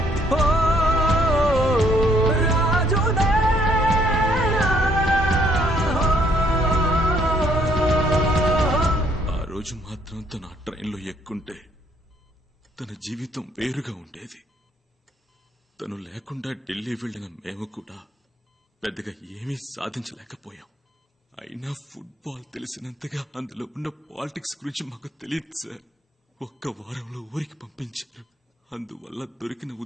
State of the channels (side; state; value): both; normal; correlation 0.66